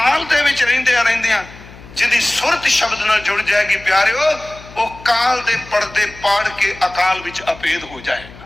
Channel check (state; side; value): noise; left; hum, 19 dB below the sound